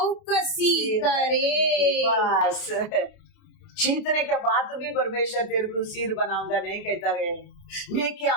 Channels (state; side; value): late; right; 28 ms